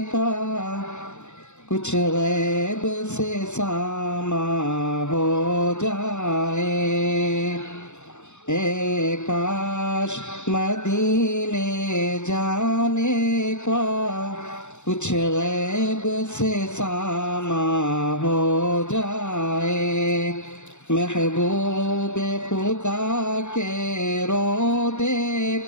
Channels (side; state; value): right; late; 0.83 ms